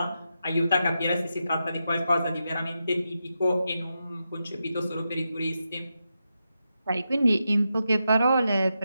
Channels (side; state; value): both; inverted; correlation -0.87